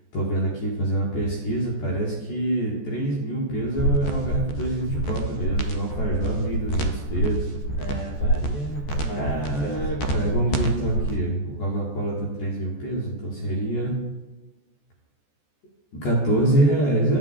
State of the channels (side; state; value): right; late; 14 ms